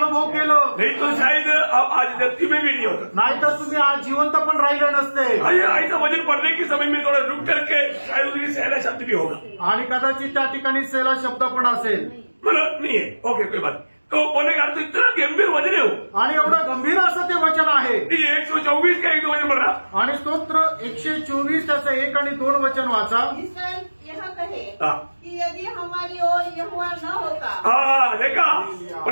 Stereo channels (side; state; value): both; inverted; correlation -1.00